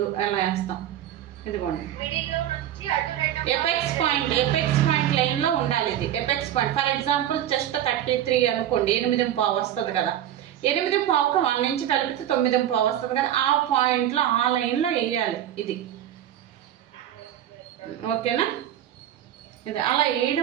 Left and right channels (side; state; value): left; quieter; 11.5 dB